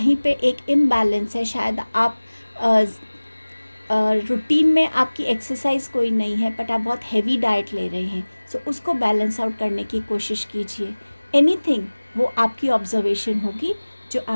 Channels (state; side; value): inverted; both; correlation -1.00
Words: पे एक इम्बैलेंस है, शायद आप रूटीन में आपकी एक्सरसाइज कोई नहीं है बट आप बहुत हैवी डाइट ले रहे हैं, सो उसको बैलेंस आउट करने की कोशिश कीजिए। एनीथिंग, वो आपकी ऑब्जर्वेशन होगी जो